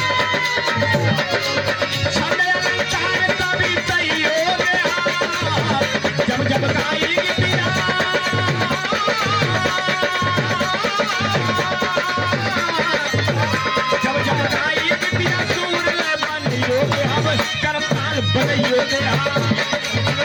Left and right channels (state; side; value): identical; both; correlation 1.00